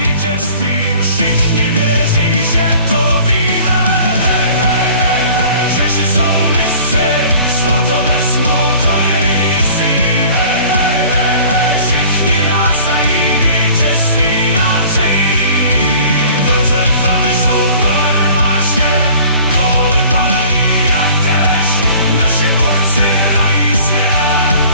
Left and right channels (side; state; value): both; inverted; correlation -0.48